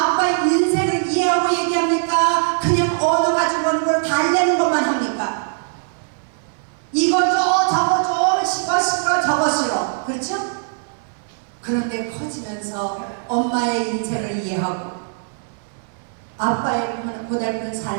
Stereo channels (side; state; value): left; silent; 63 dB below the other